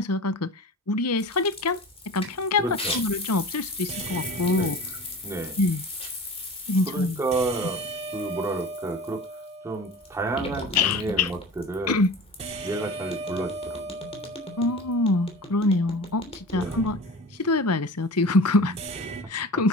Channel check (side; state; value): both; normal; correlation 0.37